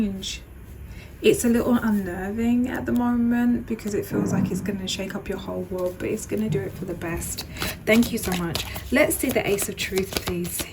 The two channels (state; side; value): identical; both; correlation 1.00